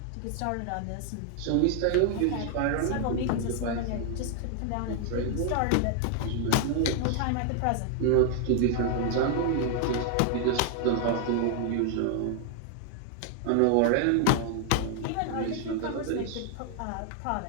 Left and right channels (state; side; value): different; both; correlation 0.00